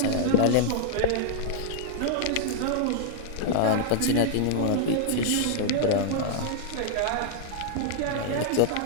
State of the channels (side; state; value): both; different; correlation -0.01